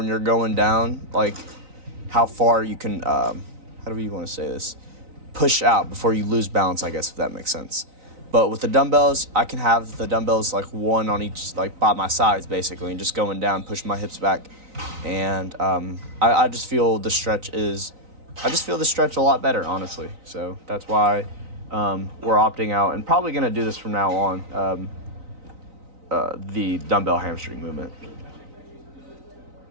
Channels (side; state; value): left; late; 3.9 ms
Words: you're going down, like how far you can. How do you want to say this? Push out before you lose balance, I guess, if that makes sense. But with the dumbbells, I can have the dumbbells like one on each, like by my sides, basically, and just going down, pushing my hips back, and I just feel the stretch a lot better, honestly. So that's why we're opting out and probably gonna do this from now on. The dumbbell hamstring movement.